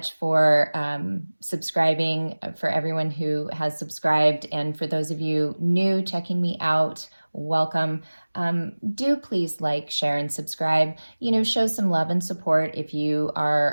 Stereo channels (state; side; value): inverted; both; correlation -1.00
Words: for subscribing, for everyone who has subscribed. And for those of you new checking me out, welcome. Do please like, share, and subscribe. Show some love and support if you